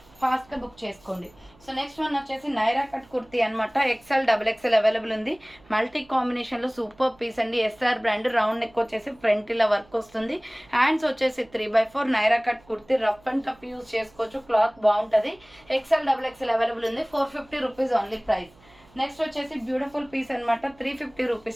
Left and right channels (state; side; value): noise; right; hum, 28 dB below the sound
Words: ఫాస్ట్గా బుక్ చేసుకోండి. సో నెక్స్ట్ వన్ వచ్చేసి నైరా కట్ కుర్తీ అనమాట. ఎక్సెల్ డబుల్ ఎక్సెల్ అవైలబుల్ ఉంది. మల్టీ కాంబినేషన్లో సూపర్ పీస్ అండి. S R brand. రౌండ్ నెక్ వచ్చేసి ఫ్రంట్ ఇలా వర్క్ వస్తుంది. హ్యాండ్స్ వచ్చేసి 3/4 Naira cut kurti. Rough and tough use చేసుకోవచ్చు. క్లాత్ బాగుంటుంది. ఎక్సెల్ డబుల్ ఎక్సెల్ అవైలబుల్ ఉంది. 450 రూపీస్ ఓన్లీ ప్రైస్. నెక్స్ట్ వచ్చేసి బ్యూటిఫుల్ పీస్ అనమాట. 350